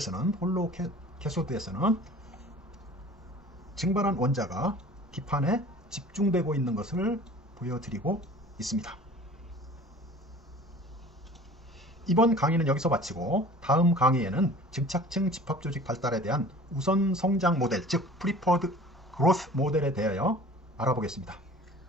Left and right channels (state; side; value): normal; both; correlation 0.45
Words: 캐소드에서는 증발한 원자가 기판에 집중되고 있는 것을 보여드리고 있습니다. 이번 강의는 여기서 마치고 다음 강의에는 증착층 집합조직 발달에 대한 우선 성장 모델 즉 프리퍼드 그로스 모델에 대하여 알아보겠습니다.